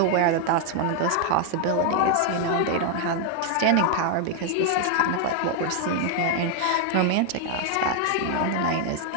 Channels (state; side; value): different; both; correlation 0.00